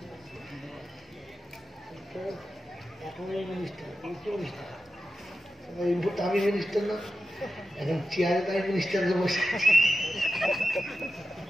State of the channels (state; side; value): normal; both; correlation 0.90